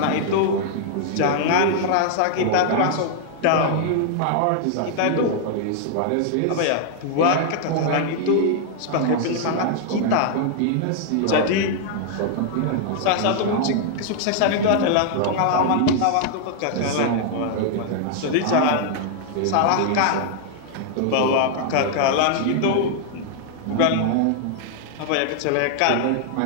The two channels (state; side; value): different; both; correlation 0.00